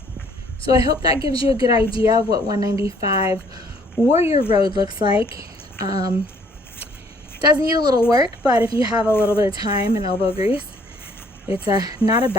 So I hope that gives you a good idea of what 195 Warrior Road looks like. Does need a little work, but if you have a little bit of time and elbow grease, it's not a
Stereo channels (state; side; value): normal; both; correlation 0.61